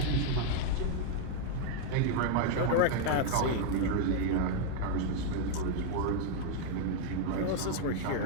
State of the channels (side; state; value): both; different; correlation 0.00